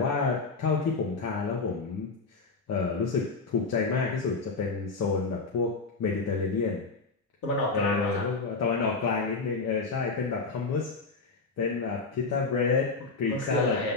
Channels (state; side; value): quieter; right; 4.1 dB